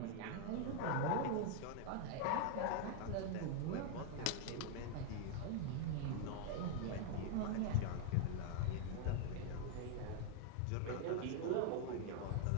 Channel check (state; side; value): different; both; correlation 0.00